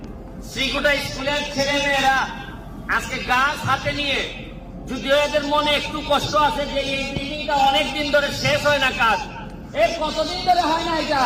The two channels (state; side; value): identical; both; correlation 1.00